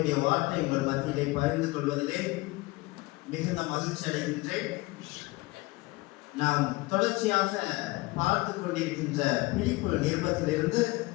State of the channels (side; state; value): right; quieter; 22.1 dB